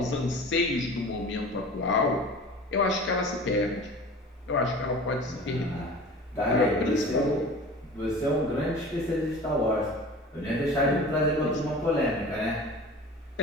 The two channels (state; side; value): normal; both; correlation 0.39